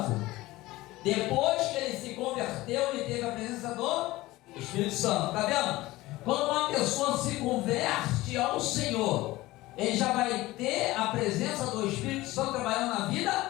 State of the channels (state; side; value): quieter; right; 18.5 dB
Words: Depois que ele se converteu, ele teve a presença do Espírito Santo. Está vendo? Quando uma pessoa se converte ao Senhor, ele já vai ter a presença do Espírito Santo trabalhando na